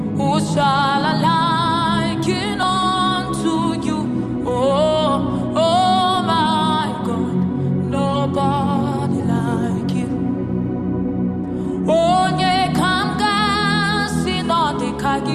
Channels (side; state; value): both; identical; correlation 1.00